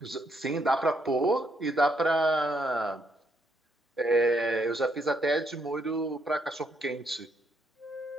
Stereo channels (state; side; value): normal; both; correlation 0.74